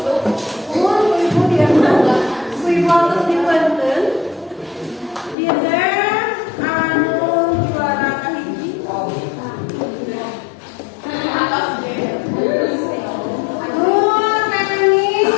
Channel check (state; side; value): drops out; right; at 5.4 s